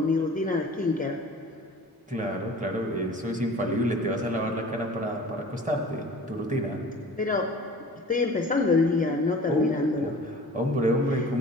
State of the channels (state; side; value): normal; both; correlation 0.44